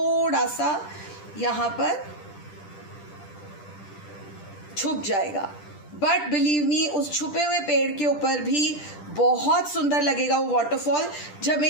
सा यहाँ पर छुप जाएगा. बट बिलीव मी, उस छुपे हुए पेड़ के ऊपर भी बहुत सुंदर लगेगा वो वाटरफॉल. जब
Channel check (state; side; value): late; right; 10 ms